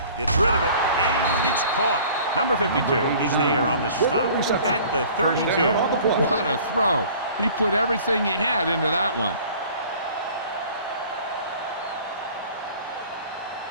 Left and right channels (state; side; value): inverted; both; correlation -0.49